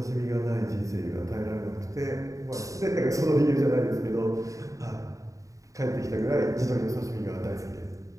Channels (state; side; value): late; left; 0.16 ms